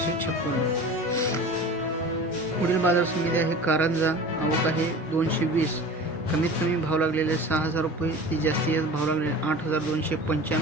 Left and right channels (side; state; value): both; normal; correlation 0.37